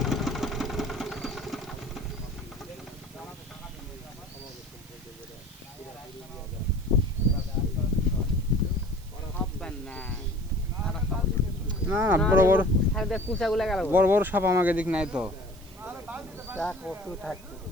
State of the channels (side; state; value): right; noise; hiss, 23 dB below the sound